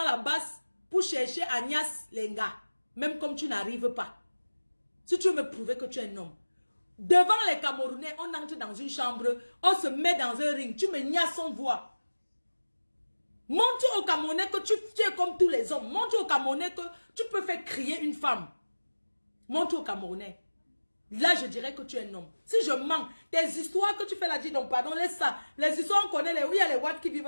la base pour chercher Agnès Lenga. Même comme tu n'arrives pas. Si tu veux me prouver que tu es un homme. Devant les Camerounais, on entre dans une chambre, on se met dans un ring. Tu me niaises sans voix. Montre aux Camerounais que tu es comme tous les hommes. Montre aux Camerounais que tu peux faire crier une femme. Montre aux Camerounais. Là, je dirais que tu es un homme. Si je mens, tes histoires que tu fais là, dis donc, pardon, laisse ça. Les histoires, on connaît les... Oui, il y a les Watt qui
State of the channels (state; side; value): inverted; both; correlation -1.00